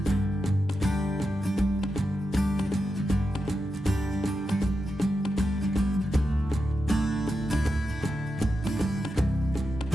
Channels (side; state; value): both; normal; correlation 0.88